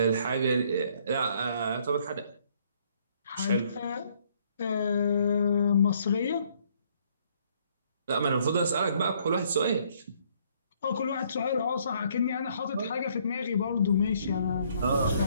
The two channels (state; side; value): inverted; both; correlation -0.65